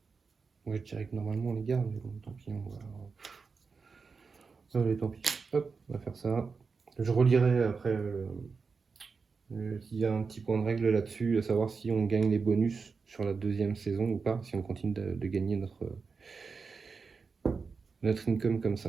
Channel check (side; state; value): left; quieter; 4.9 dB